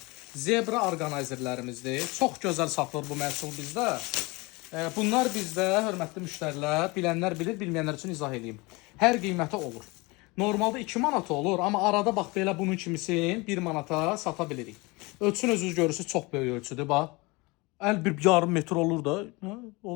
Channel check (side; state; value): right; quieter; 25.1 dB